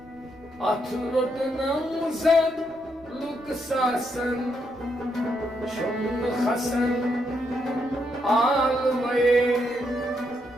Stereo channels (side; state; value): right; noise; rumble, 26 dB below the sound